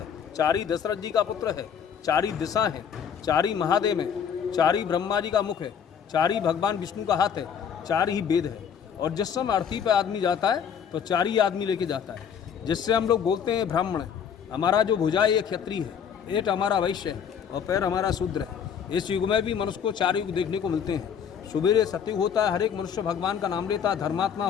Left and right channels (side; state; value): right; quieter; 7.7 dB